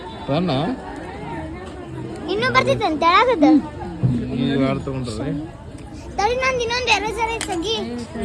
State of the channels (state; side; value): identical; both; correlation 1.00